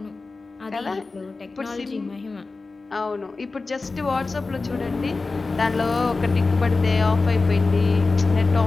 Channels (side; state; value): right; quieter; 3.8 dB